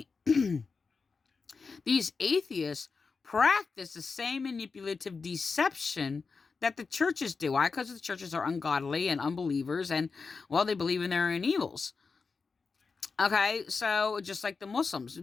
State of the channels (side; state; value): right; quieter; 4.7 dB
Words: these atheists practice the same manipulative deception that the churches do. Why? Because the churches are ungodly and unbelievers, and, well, they believe in their own evils. Okay, so just like the Muslims,